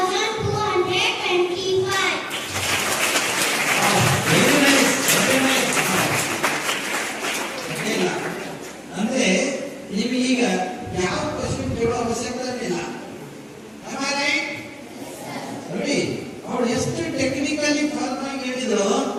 Very nice, very nice. ಇಲ್ಲ ಅಂದ್ರೆ ನೀವು ಈಗ ಯಾವ ಕ್ವಶನ್ ಕೇಳೋ ಅವಶ್ಯಕತೆ ಇಲ್ಲ. ನೋಡಿ, ಅವಳು ಎಷ್ಟು ಟೆಕ್ನಿಕಲಿ ಫಾರ್ಮ್ ಆಗಿ ಹೇಳಿದ್ರು,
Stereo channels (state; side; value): identical; both; correlation 1.00